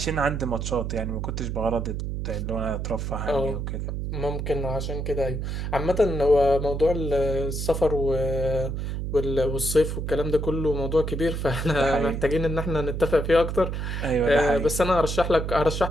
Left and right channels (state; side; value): noise; right; hum, 3 dB below the sound